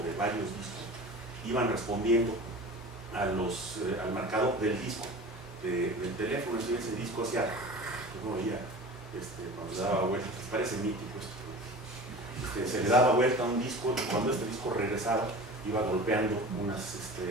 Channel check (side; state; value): both; normal; correlation 0.36